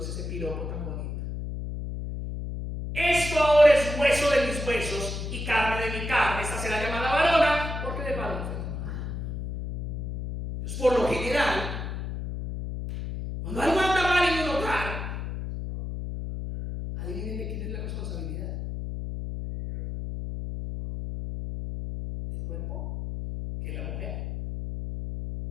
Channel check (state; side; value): noise; left; hum, 5 dB below the sound